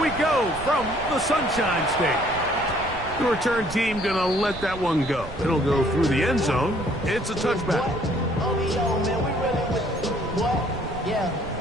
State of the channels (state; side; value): noise; right; rumble, 13 dB below the sound